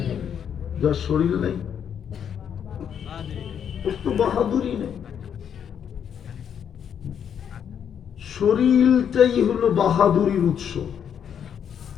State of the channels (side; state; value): right; quieter; 8.3 dB